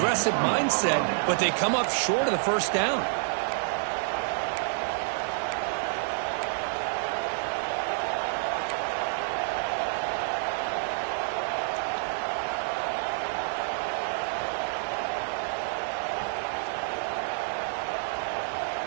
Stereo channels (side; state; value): left; silent; digital silence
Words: mindset, but they come up short of the 1st down.